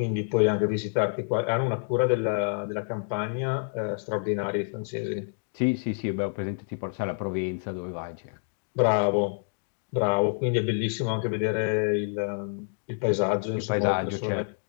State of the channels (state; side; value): silent; right; digital silence